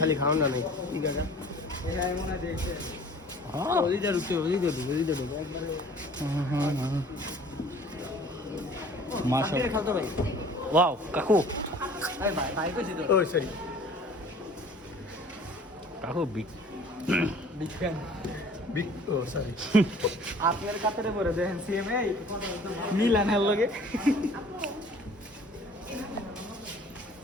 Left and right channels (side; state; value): both; normal; correlation 0.49